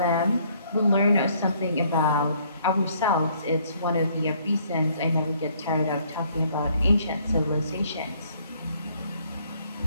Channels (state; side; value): inverted; both; correlation -0.64